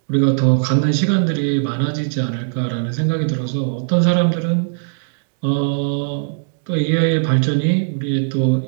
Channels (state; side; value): silent; left; digital silence